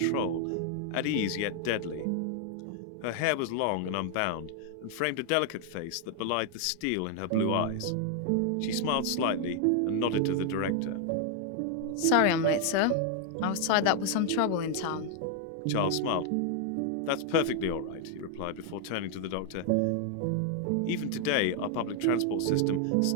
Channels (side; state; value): both; different; correlation 0.00